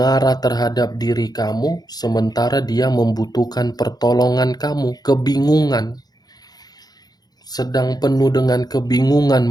terhadap diri kamu, sementara dia membutuhkan pertolongan kamu. Kebingungan. Sedang penuh dengan kebingungan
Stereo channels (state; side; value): late; right; 0.19 ms